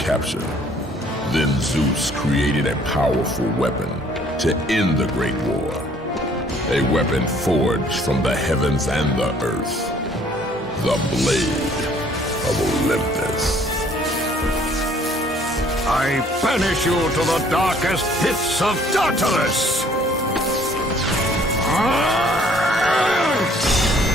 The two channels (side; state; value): both; normal; correlation 0.59